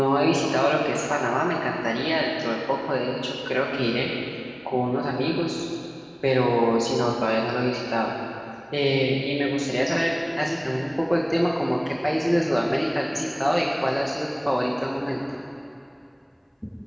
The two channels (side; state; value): both; identical; correlation 1.00